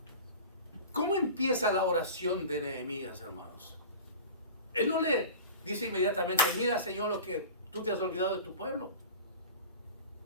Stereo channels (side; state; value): both; inverted; correlation -0.36